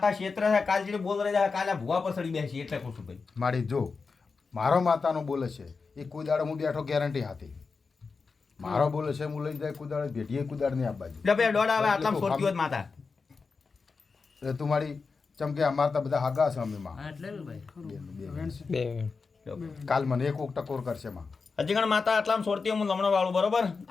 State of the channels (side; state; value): right; quieter; 4.7 dB